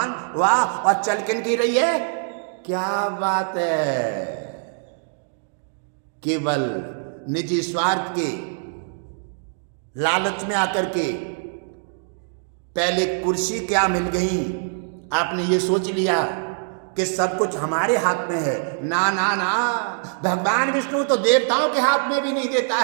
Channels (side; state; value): left; silent; digital silence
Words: वाह। और चल किन की रही है? क्या बात है! केवल निजी स्वार्थ के लालच में आकर के पहले कुर्सी क्या मिल गई, आपने ये सोच लिया कि सब कुछ हमारे हाथ में है। ना ना ना, भगवान विष्णु तो देवताओं के हाथ में भी नहीं देता